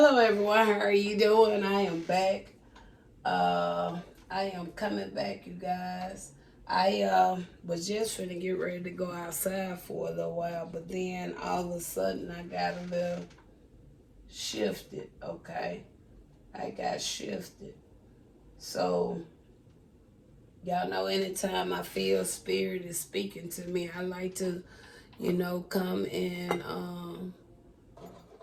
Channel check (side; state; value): both; identical; correlation 1.00